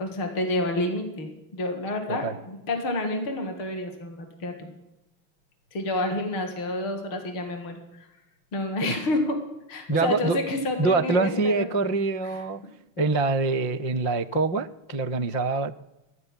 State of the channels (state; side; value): late; right; 6.5 ms